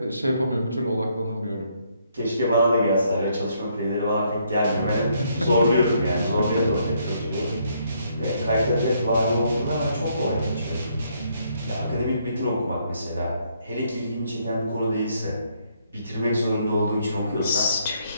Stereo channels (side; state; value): both; inverted; correlation -0.71